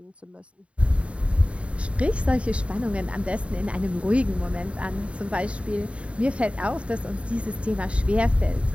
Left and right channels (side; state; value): left; late; 0.062 ms